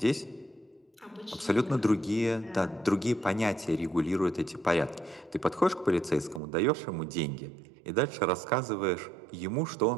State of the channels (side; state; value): left; drops out; at 6.4 s